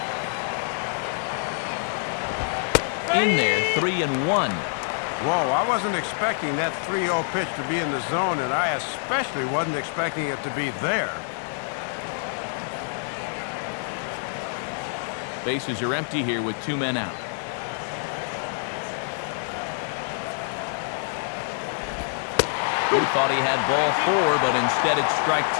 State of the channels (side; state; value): right; silent; digital silence